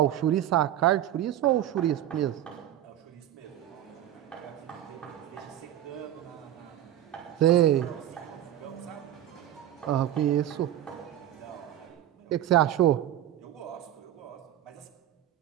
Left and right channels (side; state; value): left; quieter; 12.0 dB